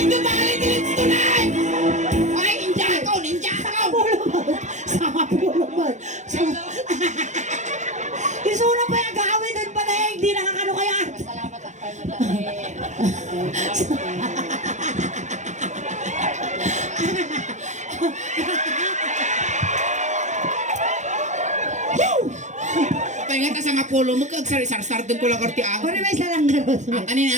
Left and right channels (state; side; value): late; left; 0.35 ms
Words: dumali din tunay! Ay, ninja ka! Sama pulo man. Isuna pa yung gawin doon pa na hindi nakakano kaya. Salamat ako. Pahinga ka sa nga polo mo, kagsari-sar-sar din ko lang karti ang. Kung may salang garot. Ang kanin